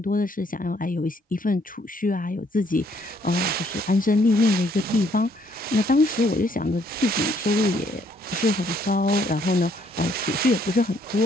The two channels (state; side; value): normal; both; correlation 0.67